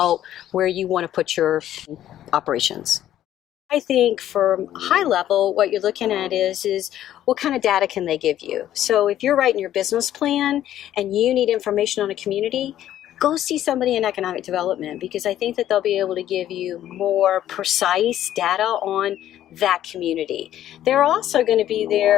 where you want to put your operations. I think from high level, what you're looking at is what kind of data can they give you? So if you're writing your business plan and you need information on a community, go see somebody in economic development, because I think that they'll be able to give you more precise data on that community. They're also going to be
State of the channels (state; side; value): quieter; right; 12.1 dB